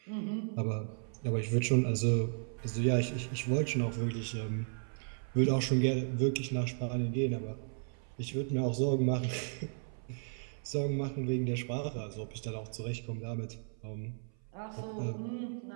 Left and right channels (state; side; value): silent; left; 55 dB below the other